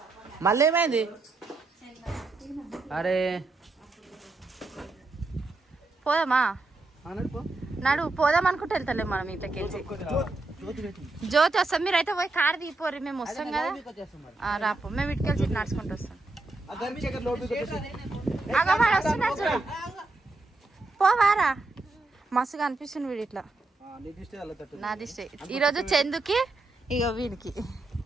మళ్ళీ ఏమైంది? అరే పోదామా? నడు పోదాం అనుకుంటే వెళ్తలే మనం ఇంట్లోకి. జ్యోతి వస్తాం, మీరైతే పోయి కారు దిగిపోరు, మేము వస్తాం కదా. రాపో, మేము ఇటుకెళ్ళి నడుచుకుంటూ వస్తాం. పోవారా? మస్తుగా అనిపిస్తుంది వీడు ఇట్లా. నా దిష్టి ఈరోజు చందుకి, ఇక వీడికి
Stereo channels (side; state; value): left; quieter; 3.2 dB